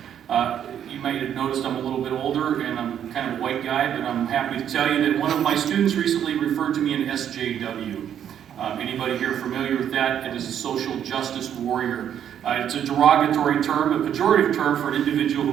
You might have noticed I'm a little bit older, and I'm kind of a white guy, but I'm happy to tell you that one of my students recently referred to me in SJW. Anybody here familiar with that? It is a social justice warrior. It's a derogatory term, a pejorative term for an individual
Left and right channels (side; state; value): left; quieter; 9.5 dB